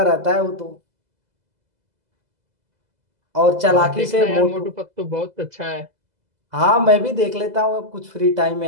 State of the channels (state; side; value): late; left; 2.0 ms